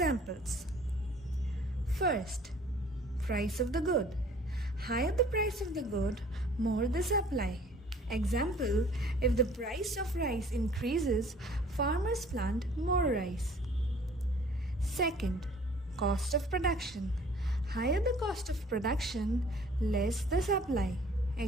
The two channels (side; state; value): both; normal; correlation 0.53